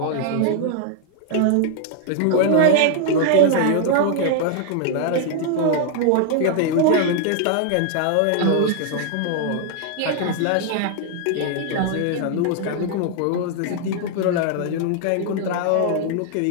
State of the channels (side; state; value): both; different; correlation 0.00